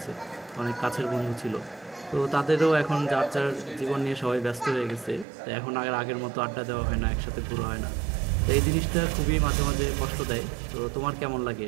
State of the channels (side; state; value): left; drops out; at 5.2 s